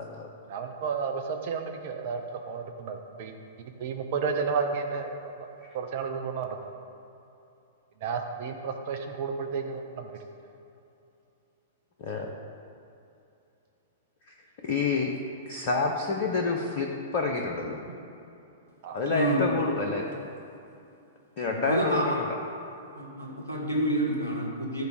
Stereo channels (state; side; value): inverted; both; correlation -0.31